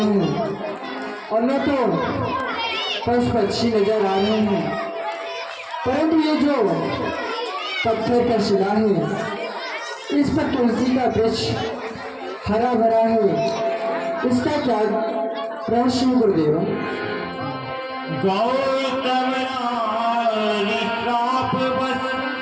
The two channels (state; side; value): identical; both; correlation 1.00